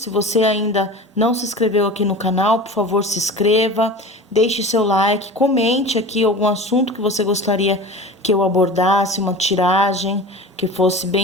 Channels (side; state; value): both; normal; correlation 0.35